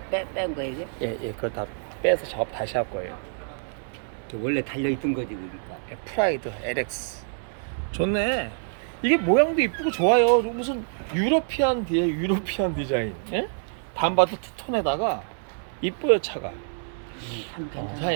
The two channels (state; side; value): silent; left; digital silence